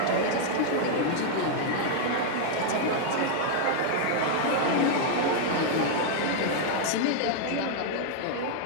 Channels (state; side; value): different; both; correlation -0.01